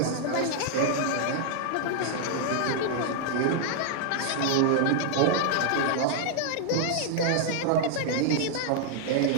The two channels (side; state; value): both; different; correlation -0.01